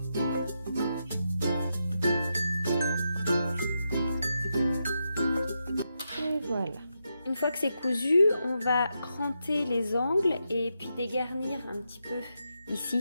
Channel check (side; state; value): both; inverted; correlation -0.85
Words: Et voilà. Une fois que c'est cousu, on va cranter les angles et puis dégarnir un petit peu